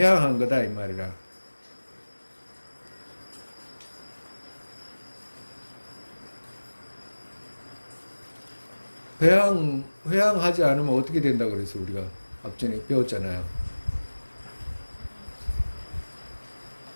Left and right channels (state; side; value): inverted; both; correlation -1.00